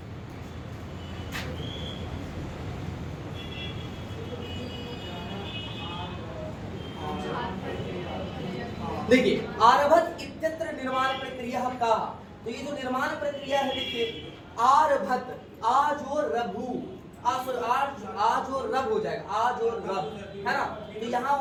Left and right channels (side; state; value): both; identical; correlation 1.00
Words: देखिए आरभत इत्यत्र निर्माण प्रक्रिया का, तो ये जो निर्माण प्रक्रिया है देखिए आरभत, आज और रभु, आज और रब हो जाएगा, आज और रब, है ना। तो यहाँ